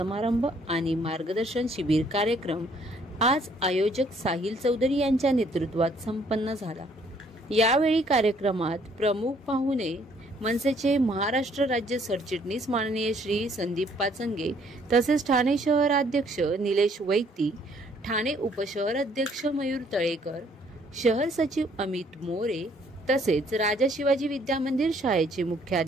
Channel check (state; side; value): normal; both; correlation 0.64